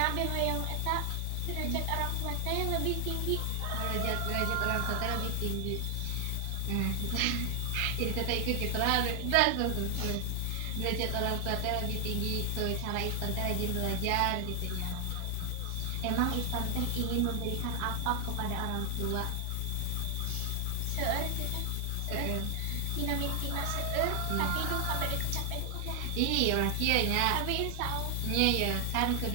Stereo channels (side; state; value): both; different; correlation 0.00